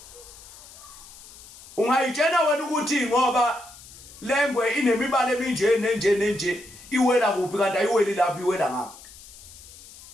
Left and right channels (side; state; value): left; noise; hiss, 19 dB below the sound